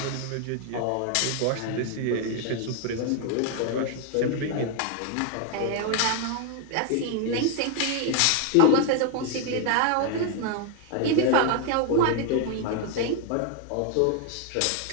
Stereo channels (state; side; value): different; both; correlation 0.01